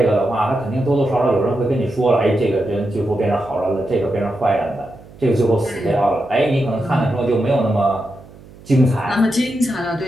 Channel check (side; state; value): right; noise; hum, 21 dB below the sound